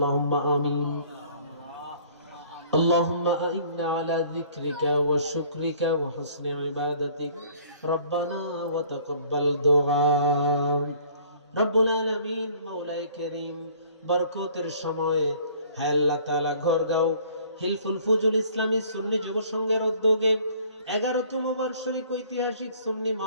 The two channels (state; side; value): inverted; both; correlation -0.55